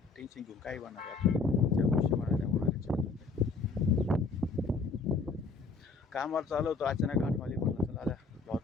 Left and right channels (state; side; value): quieter; right; 4.3 dB